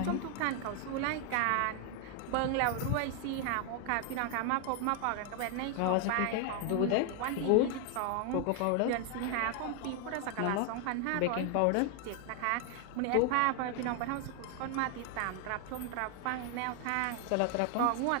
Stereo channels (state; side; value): different; both; correlation 0.00